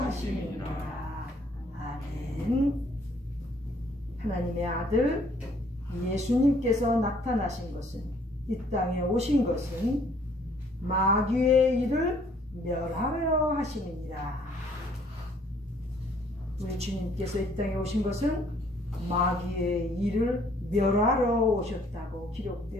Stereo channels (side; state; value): both; normal; correlation 0.62